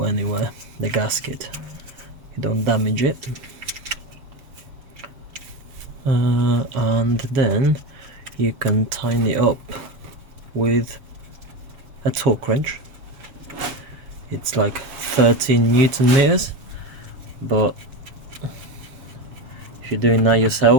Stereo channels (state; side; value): late; left; 7.4 ms